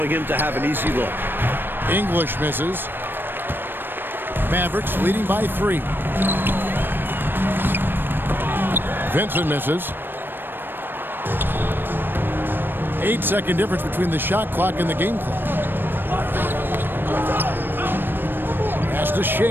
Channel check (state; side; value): late; left; 0.096 ms